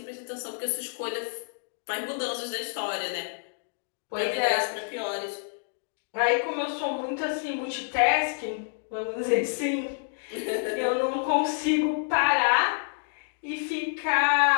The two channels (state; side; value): silent; right; digital silence